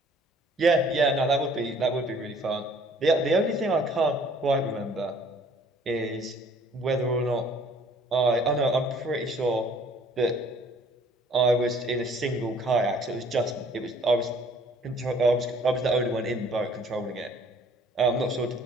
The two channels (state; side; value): normal; both; correlation 0.57